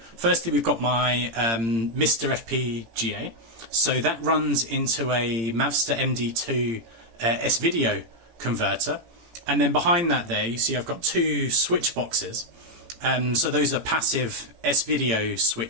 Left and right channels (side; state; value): left; late; 18 ms